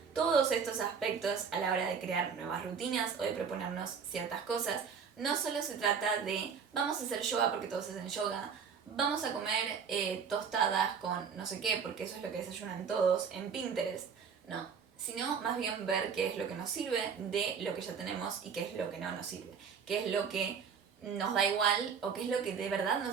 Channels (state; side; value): quieter; left; 6.5 dB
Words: todos estos aspectos a la hora de crear nuevas rutinas o de proponernos ciertas cosas. No solo se trata de vamos a hacer yoga porque todos hacen yoga, vamos a comer tostadas con no sé qué porque eso es lo que desayunan todos en Pinterest. No, sino más bien ver qué es lo que nos sirve de lo que ya tenemos y qué es lo que no nos sirve, qué es lo que nos da igual o qué es lo que de verdad